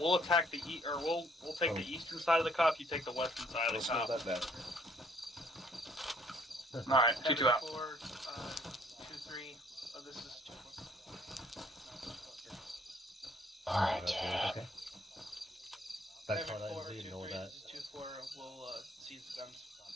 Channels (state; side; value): normal; both; correlation 0.63